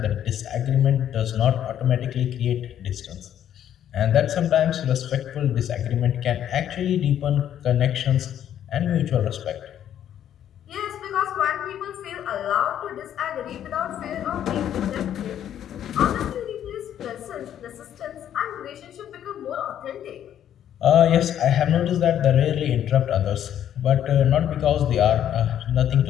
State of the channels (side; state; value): right; quieter; 10.4 dB